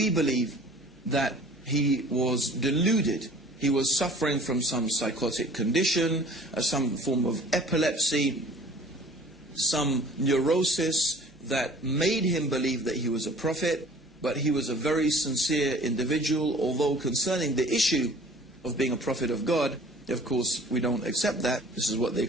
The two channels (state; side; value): normal; both; correlation 0.49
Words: believe that he was deluded. He was suffering from some psychotic condition, some form of epilepsy, some neurosis that made him believe that he was a prophet, but he was a very sincere individual, although concerning the issue of being a prophet of God, of course, we don't accept that. This is what they